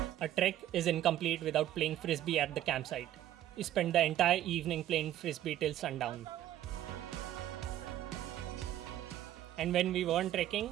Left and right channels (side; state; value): left; quieter; 12.6 dB